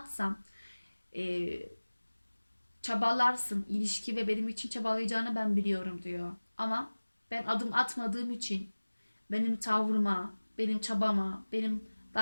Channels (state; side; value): inverted; both; correlation -1.00